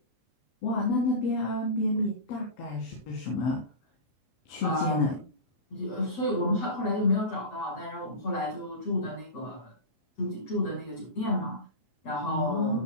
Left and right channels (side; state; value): right; late; 8.0 ms